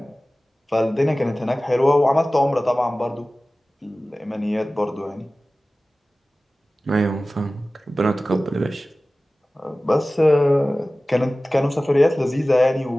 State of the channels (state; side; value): normal; both; correlation 0.97